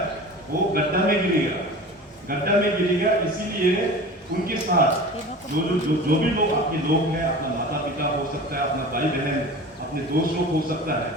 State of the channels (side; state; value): both; normal; correlation 0.36